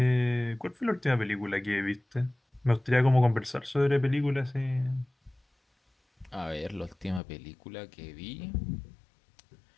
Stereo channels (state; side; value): drops out; right; at 7.2 s